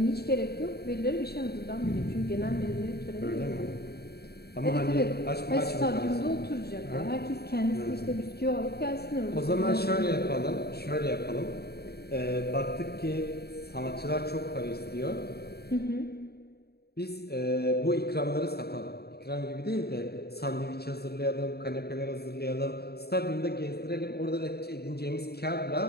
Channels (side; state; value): right; late; 0.47 ms